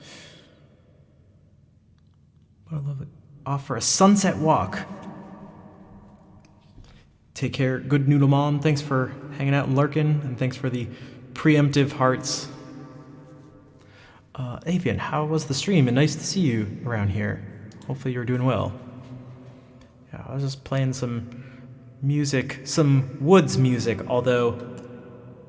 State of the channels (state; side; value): identical; both; correlation 1.00